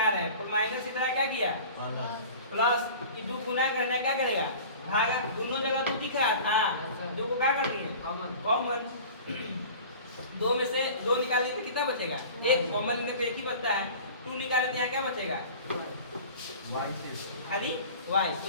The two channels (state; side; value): inverted; both; correlation -0.40